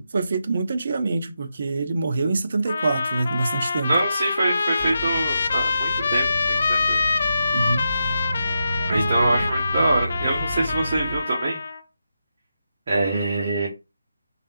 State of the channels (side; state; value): both; inverted; correlation -0.86